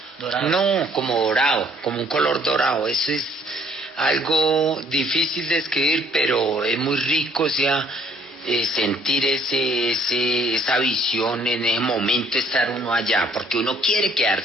¿Dorado? No, como dorado, como un color dorado. Eso es algo difícil de escribir, pero es muy rico, o sea, sentir esa visión en ese momento, estar uno allá, porque uno quiere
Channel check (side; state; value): both; normal; correlation 0.61